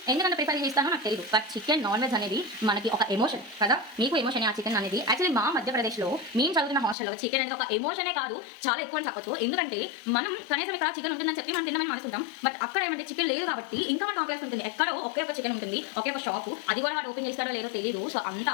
ఎందుకంటే ప్రిఫర్ చేస్తానో నాకు తెలియదు. బట్ చికెన్ నాన్ వెజ్ అనేది మనకి ఒక ఎమోషన్ కదా. మీకు ఎమోషన్ ఆ చికెన్ అనేది. యాక్చువల్లీ మా మధ్యప్రదేశ్లో మేము చదువుతున్న హాస్టల్లో చికెన్ అనేది ఒక ఎమోషనే కాదు, చాలా ఎక్కువ అని చెప్పొచ్చు. ఎందుకంటే మనం కనీసం ఇక్కడ చికెన్ ఉంటుందని చెప్పి మనం తినమని మనసుకుంటాం. బట్ అక్కడ ఏమంటే చికెన్ లేదు కాబట్టి ఇంకా మనకు ఆకలి ఉంటుంది. ఎక్కడో ఒకే ఒక చికెన్ ఉంటుంది, ఒకే ఒక షాపు. అది కూడా వాడు ఓపెన్ చేస్తాడో లేదో తెలియదు. సో అంత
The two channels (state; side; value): drops out; right; at 7.0 s